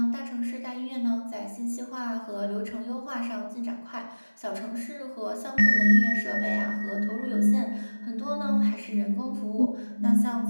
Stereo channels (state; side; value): inverted; both; correlation -1.00